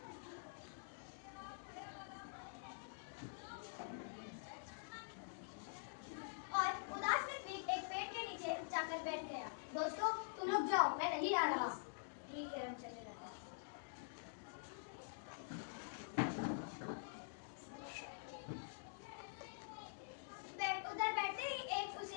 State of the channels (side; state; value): right; silent; digital silence